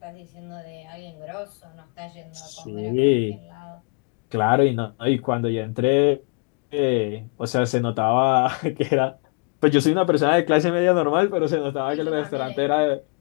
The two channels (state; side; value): quieter; right; 35.9 dB